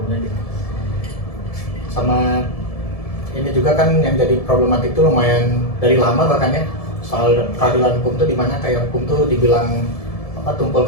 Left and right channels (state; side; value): late; right; 1.7 ms